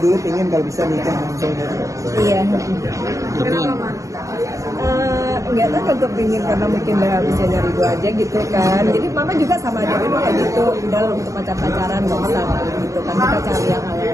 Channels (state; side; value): late; left; 0.15 ms